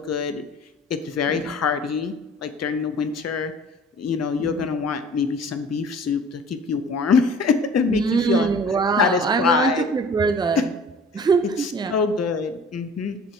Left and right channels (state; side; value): normal; both; correlation 0.46